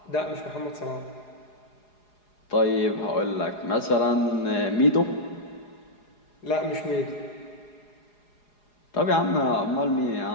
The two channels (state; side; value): late; right; 4.8 ms